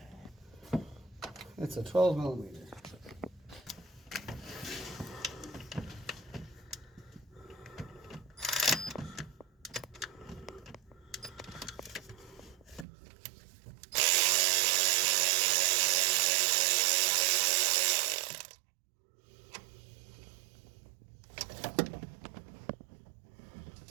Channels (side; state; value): left; drops out; at 12.9 s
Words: It's a 12 millimeter.